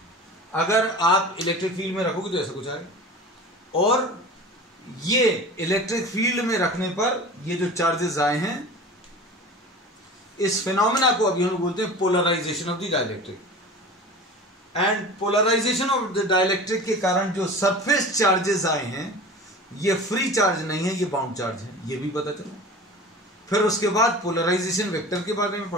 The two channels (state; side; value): normal; both; correlation 0.36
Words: अगर आप इलेक्ट्रिक फील्ड में रखोगे तो ऐसा कुछ आएगा। और ये इलेक्ट्रिक फील्ड में रखने पर ये जो चार्जेस आए हैं, इस फिनोमेना को अभी हम बोलते हैं polarization of the dielectric. And polarization of the dielectric के कारण जो सरफेस चार्जेस आए हैं ये फ्री चार्ज नहीं है, ये बाउंड चार्ज है, ये भी पता चला। फिर उसके बाद पोलराइजेशन वेक्टर के बारे में